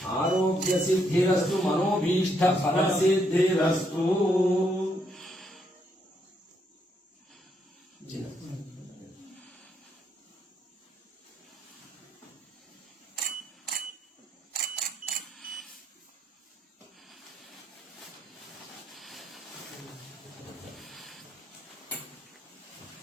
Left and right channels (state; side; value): normal; both; correlation 0.75